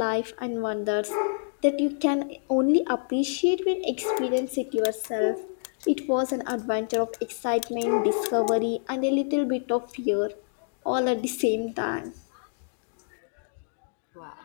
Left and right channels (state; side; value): silent; right; digital silence